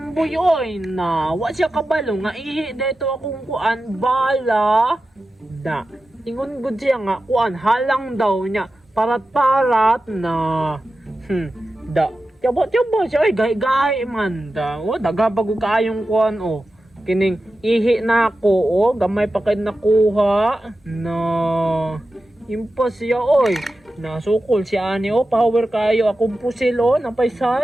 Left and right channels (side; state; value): both; normal; correlation 0.93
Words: oy na wa siya kabalo nga ihi dito akong kuan bala. Da. Ingon gud siya nga kuan halang daw niya parat-parat na. Da. Tiyaba siya oy gahi man da. O daga bago kaayong kuan o. Kining ihi na ako o gamay pa kay nakuha na. Impas siya oy. Nasukol si ani o power kayo akong pusil o napay